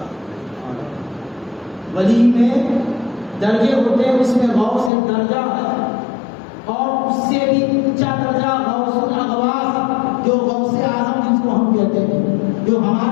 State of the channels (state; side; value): drops out; right; at 4.9 s